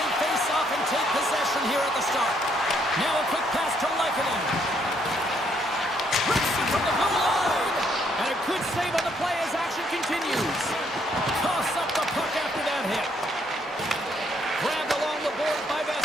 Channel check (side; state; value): both; normal; correlation 0.71